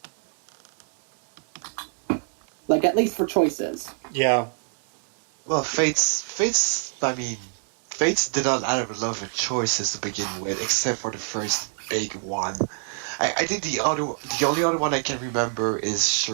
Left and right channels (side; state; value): left; silent; 62 dB below the other